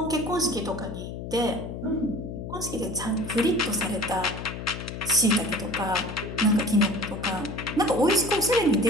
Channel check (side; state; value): left; noise; hum, 8 dB below the sound